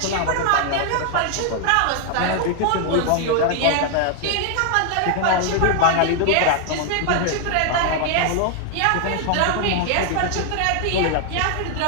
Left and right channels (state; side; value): different; both; correlation 0.00